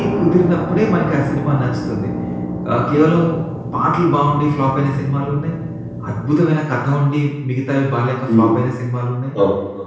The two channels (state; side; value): identical; both; correlation 1.00